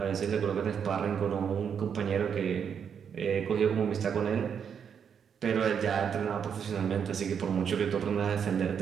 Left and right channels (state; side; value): quieter; left; 7.5 dB